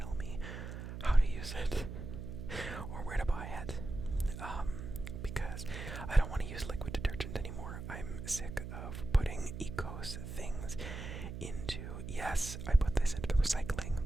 me how to use it or where to buy it. Because I don't want to use liquid detergent anymore. I'm sick of putting Ecos things into, yes, I put this into the recycling,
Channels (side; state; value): right; noise; hum, 8 dB below the sound